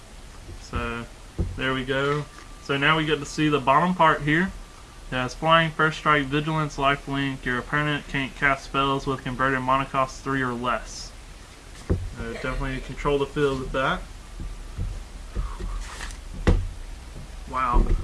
So, there we go. So now we get to see the bottom part here. It has flying, first strike, vigilance, lifelink. Your opponent can't cast spells with converted mana cost 3 or less. Definitely control the field with that. Wow.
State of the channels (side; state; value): both; identical; correlation 1.00